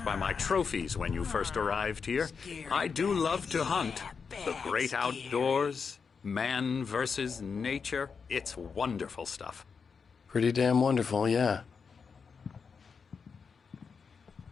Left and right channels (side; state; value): right; quieter; 5.7 dB